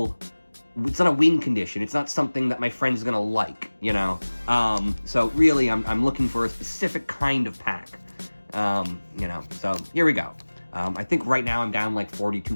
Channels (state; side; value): inverted; both; correlation -1.00